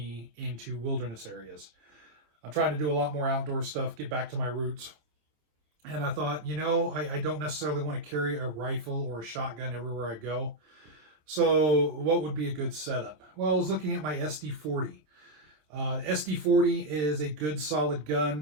into wilderness areas? I'm trying to do a lot more outdoor stuff, get back to my roots. And I thought, I don't necessarily want to carry a rifle or a shotgun everywhere I go. So what would be a good setup? Well, I was looking at my SD40. SD40 is a good solid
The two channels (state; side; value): late; left; 26 ms